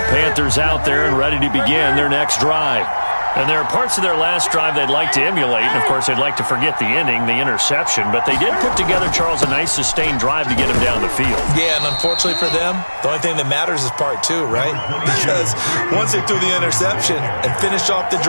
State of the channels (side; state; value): both; inverted; correlation -1.00